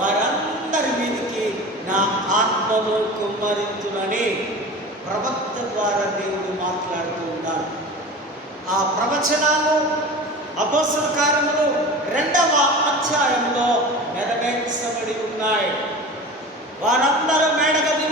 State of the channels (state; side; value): normal; both; correlation 0.34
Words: మీదకి నా ఆత్మను కుమ్మరించునని ప్రవక్త ద్వారా దేవుడు మాట్లాడుతూ ఉన్నాడు. ఆ ప్రవచనాలు అపోస్తల కార్యములు 2వ అధ్యాయంలో నెరవేర్చబడి ఉన్నాయి. వారందరూ